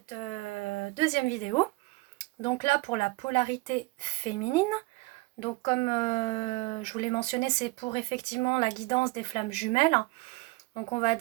deuxième vidéo. Donc là pour la polarité féminine. Donc comme je vous l'ai mentionné, c'est pour effectivement la guidance des flammes jumelles. Donc on va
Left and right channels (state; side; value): quieter; left; 22.3 dB